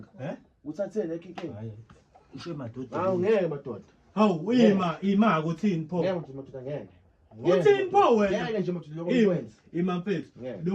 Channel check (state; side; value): identical; both; correlation 1.00